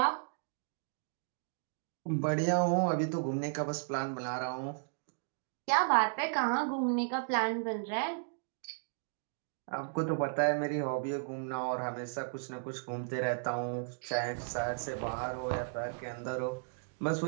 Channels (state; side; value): silent; left; digital silence